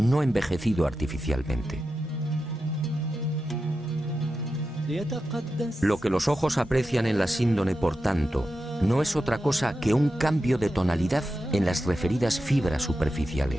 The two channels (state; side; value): normal; both; correlation 0.90